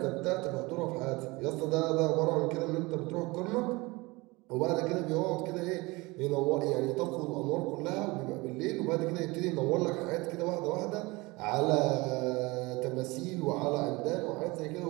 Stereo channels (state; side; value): quieter; left; 23.5 dB